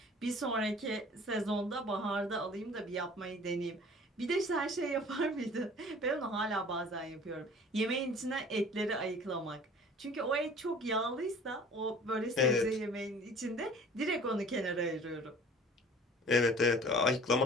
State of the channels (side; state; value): both; normal; correlation 0.47